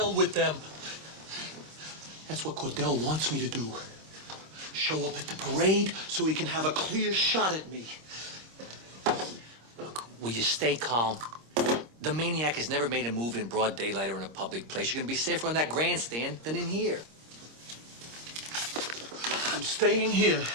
with them. That's what Cordell wants me to do. Show up at the parade so he can have a clear shot at me. Look, will you stay calm? The Maniac has never made a move in broad daylight or in a public place. You're gonna be safer on that grandstand than in here. I'm staying here.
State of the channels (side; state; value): left; late; 26 ms